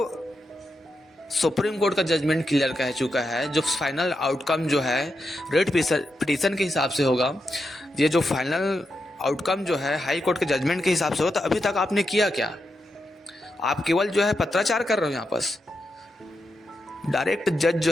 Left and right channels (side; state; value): both; normal; correlation 0.86